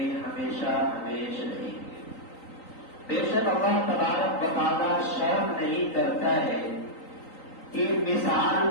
ہمیشہ ہمیشہ رہیں گے. بے شک اللہ تبارک و تعالیٰ شرم نہیں کرتا ہے کہ مثال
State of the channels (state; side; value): late; right; 3.9 ms